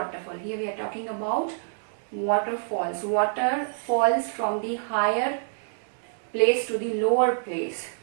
Here we are talking about waterfalls. Water falls from the higher place to the lower place.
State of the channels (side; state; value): left; silent; digital silence